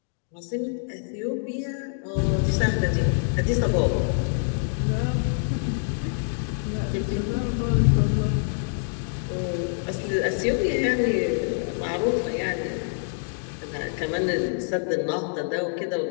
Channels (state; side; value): silent; right; digital silence